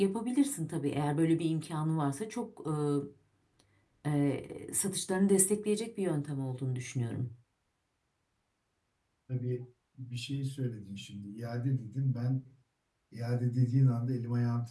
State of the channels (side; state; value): both; identical; correlation 1.00